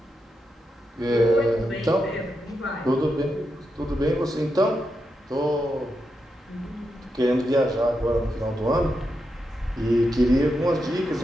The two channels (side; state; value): both; normal; correlation 0.85